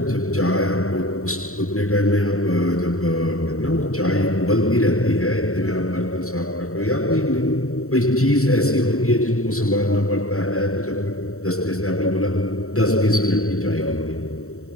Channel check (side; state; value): right; late; 0.64 ms